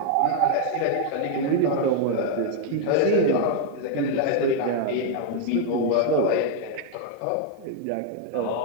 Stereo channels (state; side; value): different; both; correlation 0.00